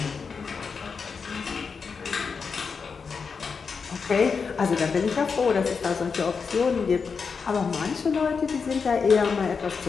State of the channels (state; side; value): quieter; right; 5.4 dB